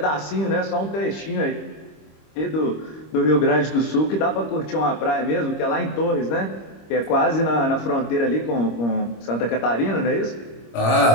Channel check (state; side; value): late; right; 26 ms